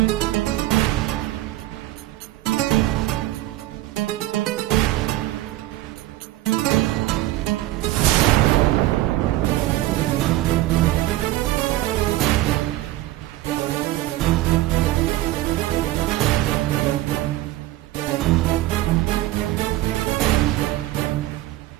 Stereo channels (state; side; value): quieter; left; 16.2 dB